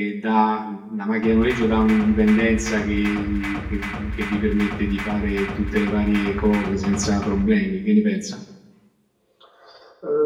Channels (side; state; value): both; identical; correlation 1.00